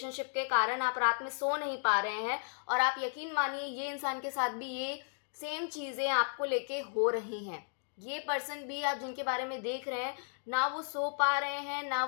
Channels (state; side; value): silent; right; digital silence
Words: के कारण आप रात में सो नहीं पा रहे हैं, और आप यकीन मानिए ये इंसान के साथ भी ये सेम चीज़ें आपको लेके हो रही हैं। ये पर्सन भी, आप जिनके बारे में देख रहे हैं, ना वो सो पा रहे हैं, ना